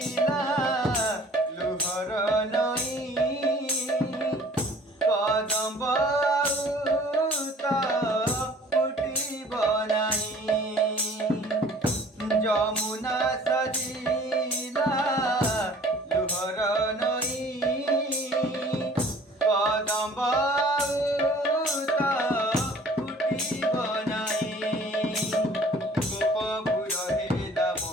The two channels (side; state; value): both; normal; correlation 0.51